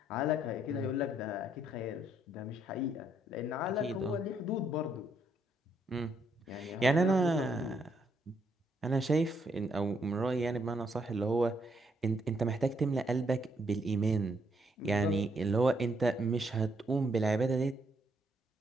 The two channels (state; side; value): normal; both; correlation 0.73